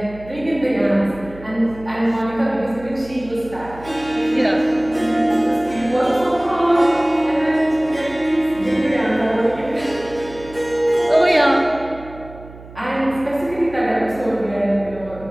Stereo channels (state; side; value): noise; right; hum, 18 dB below the sound